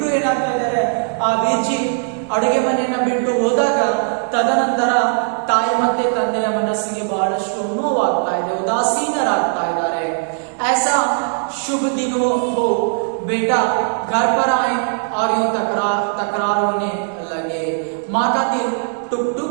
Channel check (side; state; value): left; silent; digital silence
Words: ಏನಾಗ್ತಾ ಇದ್ದಾರೆ, ಆ ವೀರ್ಜಿ ಅಡುಗೆ ಮನೆಯನ್ನ ಬಿಟ್ಟು ಹೋದಾಗ ತದನಂತರ ತಾಯಿ ಮತ್ತೆ ತಂದೆಯ ಮನಸ್ಸಿಗೆ ಬಹಳಷ್ಟು ನೋವಾಗ್ತಾ ಇದೆ, ಉದಾಸೀನರಾಗ್ತಾ ಇದ್ದಾರೆ। ऐसा शुभ दिन हो बेटा घर पर आए और यूं तकरार होने लगे। माँ का दिल टुक